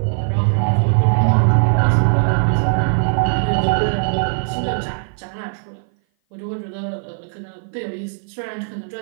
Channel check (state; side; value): silent; left; 58 dB below the other